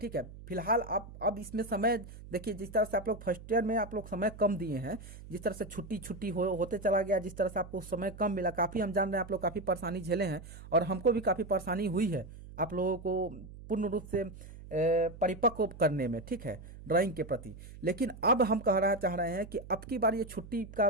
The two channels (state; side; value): noise; right; hum, 15 dB below the sound